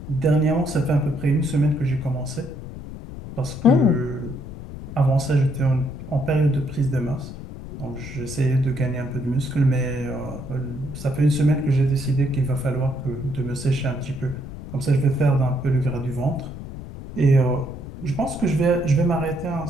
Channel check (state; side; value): noise; left; rumble, 11 dB below the sound